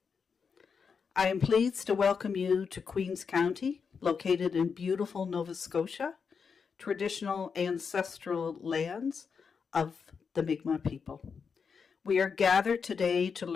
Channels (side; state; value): right; quieter; 5.9 dB